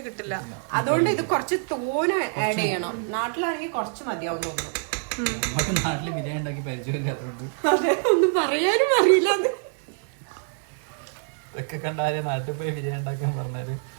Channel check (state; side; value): silent; left; 58 dB below the other